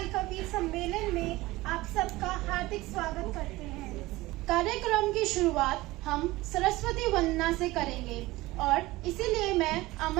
कवि सम्मेलन में आप सबका हार्दिक स्वागत करते हैं। कार्यक्रम की शुरुआत हम सरस्वती वंदना से करेंगे और इसीलिए मैं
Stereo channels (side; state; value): left; quieter; 19.4 dB